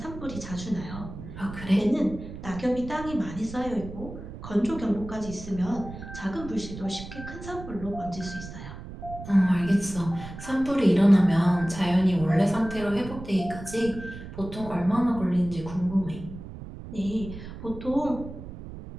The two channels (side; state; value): right; noise; rumble, 12 dB below the sound